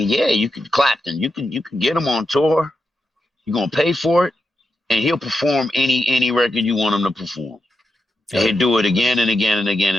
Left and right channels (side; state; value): both; normal; correlation 0.87